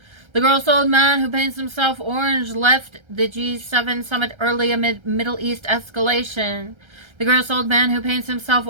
The gross old man who paints himself orange left the G7 summit early amid Middle East escalation. The gross old man who paints himself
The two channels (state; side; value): late; left; 1.3 ms